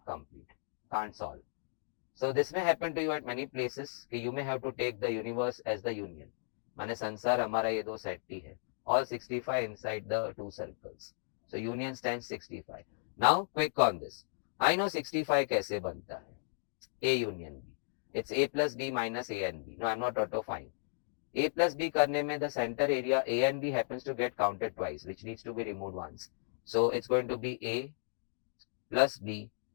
complete. Can't solve. So this may happen to you at many places. You may have to take the universe as the union. माने संसार हमारा ये दो set ही है. All 65 inside the two circles. So union stands 65. Now quick on this. I know 65 कैसे बनता है. A union B. It's A plus B minus A and B. No, I'm not auto fine. A plus B करने में the center area A and B happens to get counted twice, which needs to be removed once. So it's going to be A plus B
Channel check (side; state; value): right; silent; digital silence